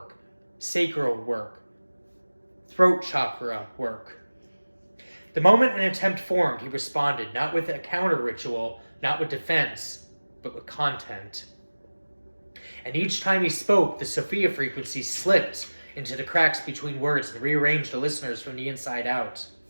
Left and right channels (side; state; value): both; inverted; correlation -1.00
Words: sacral work, throat chakra work. The moment an attempt formed, he responded, not with a counter ritual, not with defense, but with content. And each time he spoke, the Sophia Frequency slipped into the cracks between words and rearranged the listeners from the inside out.